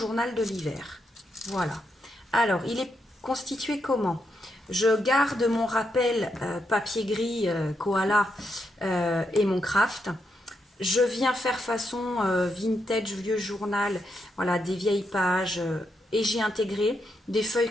de l'hiver. Voilà. Alors, il est constitué comment? Je garde mon rappel papier gris koala et mon craft. Je viens faire façon vintage, vieux journal, voilà, des vieilles pages, et j'ai intégré des feuilles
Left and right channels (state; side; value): normal; both; correlation 0.81